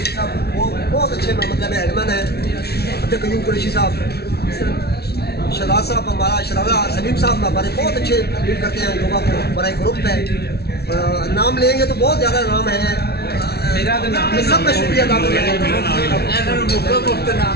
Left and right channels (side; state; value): right; late; 0.46 ms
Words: साहब वो बहुत अच्छे मतलब एडमन है, अब्दुल कयूम कुरैशी साहब, शहजाद साहब हमारा शहजादा सलीम साहब हमारे बहुत अच्छे लीड करते हैं योगा को, बड़ा एक ग्रुप है। नाम लेंगे तो बहुत ज़्यादा नाम है, मैं सबका शुक्रिया अदा करता हूँ।